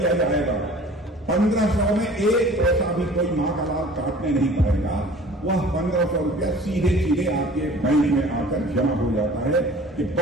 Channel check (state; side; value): normal; both; correlation 0.47